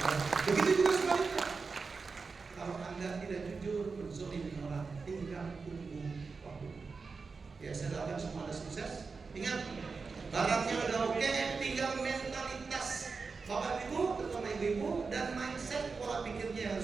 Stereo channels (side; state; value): left; quieter; 4.7 dB